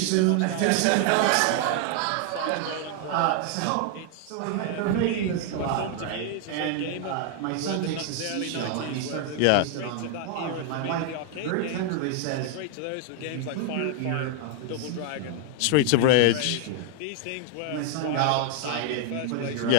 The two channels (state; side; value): different; both; correlation 0.00